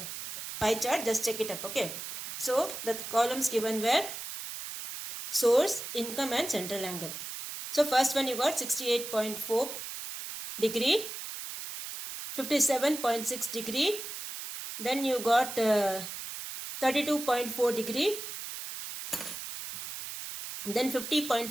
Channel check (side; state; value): right; noise; hiss, 8 dB below the sound